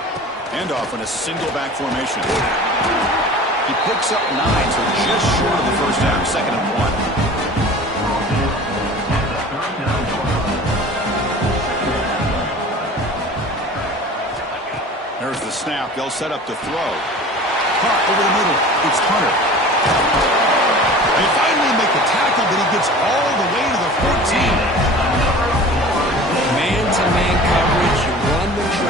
Handoff in a single back formation. He picks up 9, so just short of the first down. 2nd and 1. There's the snap. They'll set up to throw. Caught over the middle. It's Hunter. They finally make the tackle, but he gets all the way to the 14. Man-to-man coverage. You run the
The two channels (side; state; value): both; normal; correlation 0.41